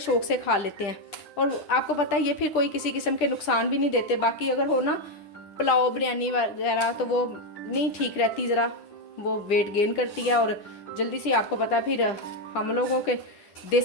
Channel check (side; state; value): right; late; 10 ms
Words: से खा लेते हैं। और आपको पता है ये फिर कोई किसी किस्म के नुकसान भी नहीं देते। बाकी अगर हो ना पुलाव बिरयानी वगैरह, तो वो नहीं ठीक रहती, ज़रा वो वेट गेन करती है और जल्दी से, आपको पता है फिर हम लोगों के